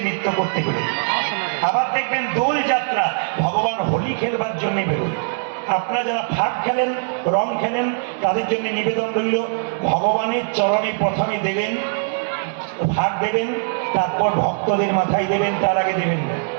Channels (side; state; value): left; silent; digital silence